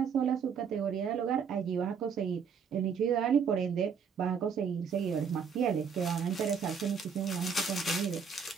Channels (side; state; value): left; quieter; 6.5 dB